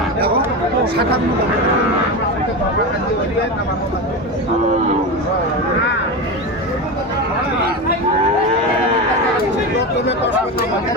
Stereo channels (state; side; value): normal; both; correlation 0.20